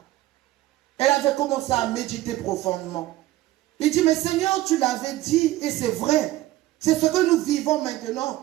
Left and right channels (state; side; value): quieter; left; 16.0 dB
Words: Elle avait commencé à méditer profondément. Il dit, mais Seigneur, tu l'avais dit, et c'est vrai. C'est ce que nous vivons